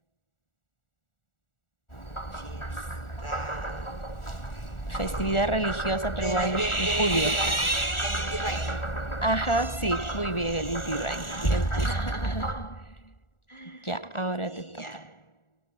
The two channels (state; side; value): late; right; 1.4 ms